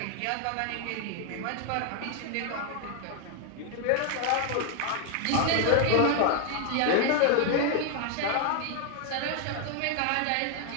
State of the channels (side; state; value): both; different; correlation 0.00